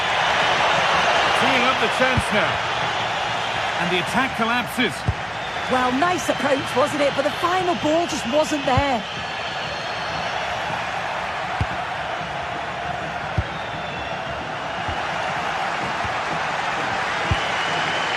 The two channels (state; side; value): identical; both; correlation 1.00